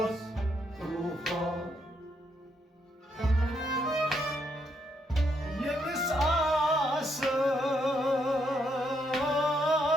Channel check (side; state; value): both; normal; correlation 0.76